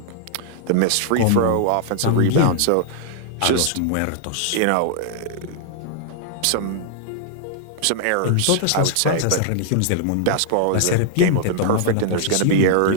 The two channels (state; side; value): different; both; correlation -0.01